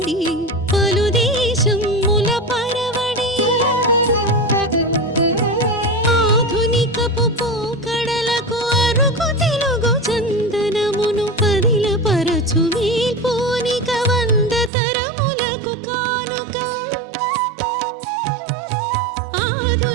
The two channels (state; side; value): drops out; left; at 14.7 s